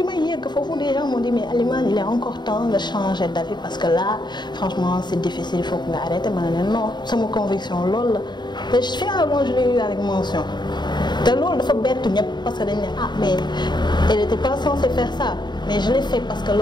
may yegg foofu des gens m'ont dit mais Alima il est encore temps de changer d'avis parce que là franchement c'est difficile il faut que nga arrêter ma ne non sama conviction loolu la te finalement je l'ai eu avec mention te loolu dafa bettu ñëpp parce que dañ ne ah mais elle était pas censée faire ça mais je l'ai fait parce que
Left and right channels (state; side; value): late; right; 0.21 ms